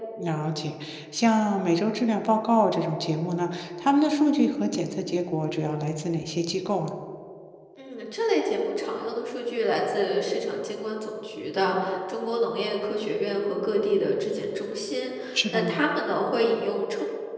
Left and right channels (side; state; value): both; identical; correlation 1.00